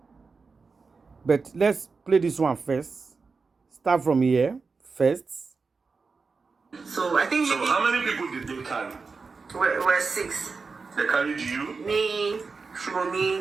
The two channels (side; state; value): left; quieter; 4.6 dB